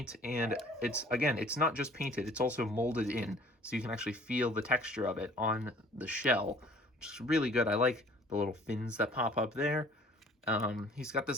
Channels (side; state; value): both; normal; correlation 0.52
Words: and it's not just painted, it's also molded in, so you can actually feel the texture of it on the shell, which is really good. I like the little fins that pop up there. He's got